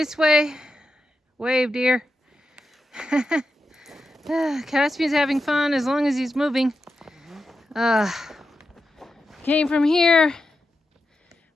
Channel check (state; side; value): normal; both; correlation 0.89